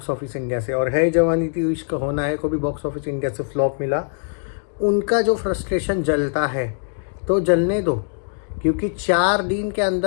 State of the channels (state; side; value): silent; right; digital silence